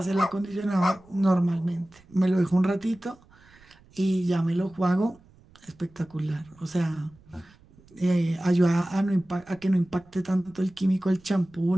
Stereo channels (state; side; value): noise; right; rumble, 27 dB below the sound